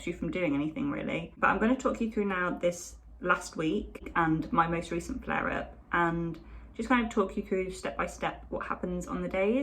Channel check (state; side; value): identical; both; correlation 1.00